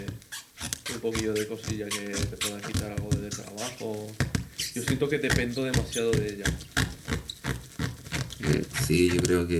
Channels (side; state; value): both; identical; correlation 1.00